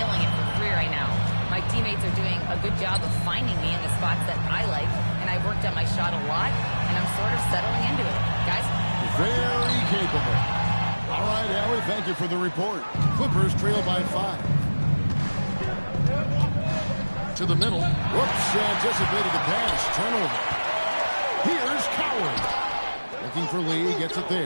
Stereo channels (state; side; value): inverted; both; correlation -1.00